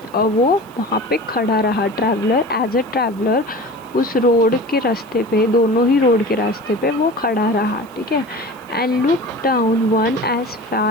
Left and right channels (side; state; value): right; noise; hiss, 28 dB below the sound